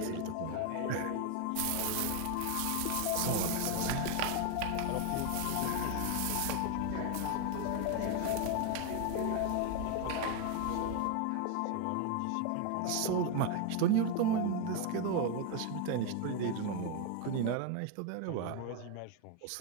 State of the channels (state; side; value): different; both; correlation 0.01